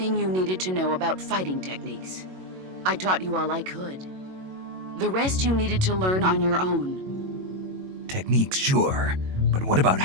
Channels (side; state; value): left; late; 21 ms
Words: you needed to know about fighting techniques. I taught you all I could. The rest you needed to learn on your own. Techniques, sure. But what about